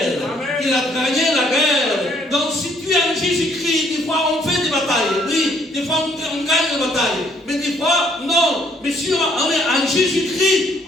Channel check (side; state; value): both; normal; correlation 0.65